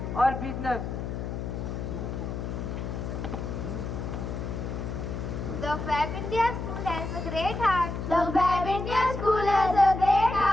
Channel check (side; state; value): left; noise; hum, 5 dB below the sound